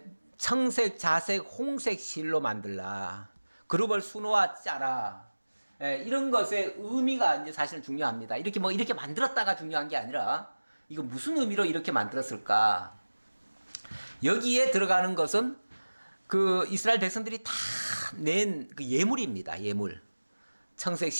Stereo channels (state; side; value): inverted; both; correlation -1.00